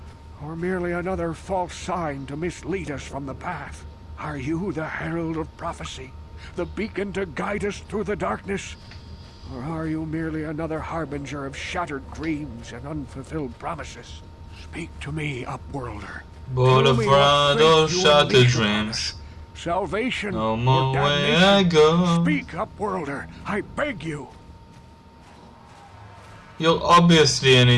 Or merely another false sign to mislead us from the path? Are you the herald of prophecy? The beacon to guide us through the darkness? Or are you merely another harbinger of shattered dreams and unfulfilled promises? Speak to me, Upworlder. Boulevard of shattered dreams. Salvation no or more way damnation? I go. Speak, Upworlder. I beg you. You're obviously an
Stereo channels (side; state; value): both; identical; correlation 1.00